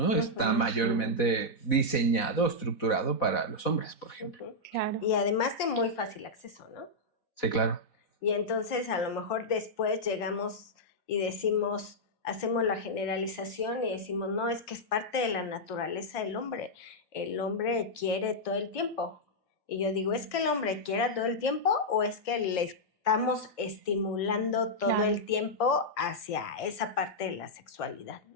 Está mayormente diseñado, estructurado para los hombres, por ejemplo. Claro. Y además de muy fácil acceso, ¿no? Sí, claro. Y entonces a lo mejor después llegamos y decimos, hacemos la generalización y decimos, no, es que es parte de la naturaleza del hombre. El hombre quiere todo el tiempo. Y yo digo, ¿es que el hombre quiera todo el tiempo o es que le estamos estimulando todo el tiempo hacia esa parte de la sexualidad,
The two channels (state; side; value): late; right; 4.1 ms